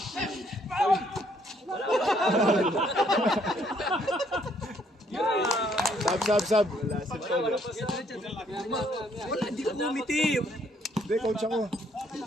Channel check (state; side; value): normal; both; correlation 0.68